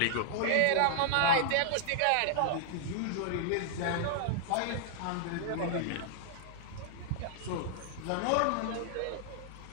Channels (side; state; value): both; different; correlation -0.01